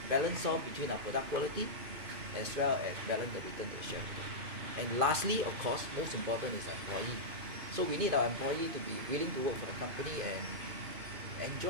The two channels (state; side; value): late; left; 2.5 ms